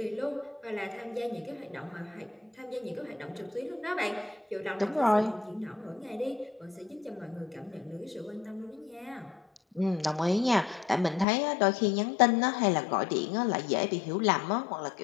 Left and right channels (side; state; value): right; drops out; at 11.2 s